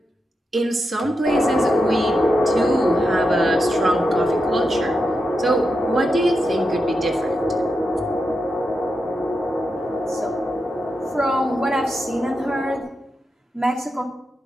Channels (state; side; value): normal; both; correlation 0.87